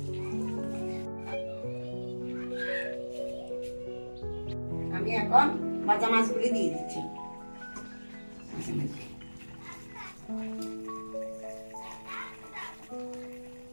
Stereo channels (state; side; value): inverted; both; correlation -1.00